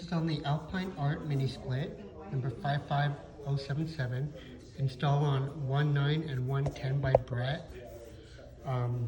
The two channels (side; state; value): both; identical; correlation 1.00